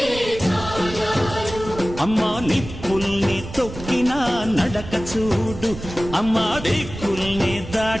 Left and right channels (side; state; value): right; noise; rumble, 11 dB below the sound